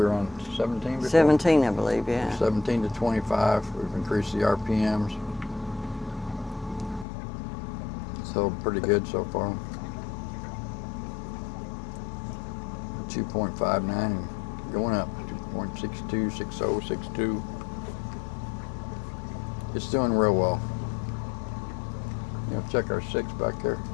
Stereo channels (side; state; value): right; drops out; at 7.1 s